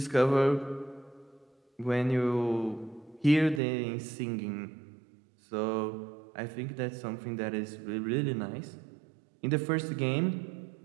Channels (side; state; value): left; drops out; at 3.6 s